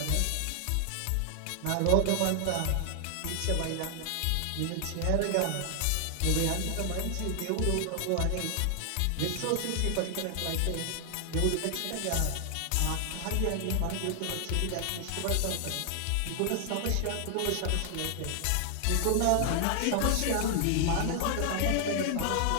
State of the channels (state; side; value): different; both; correlation 0.00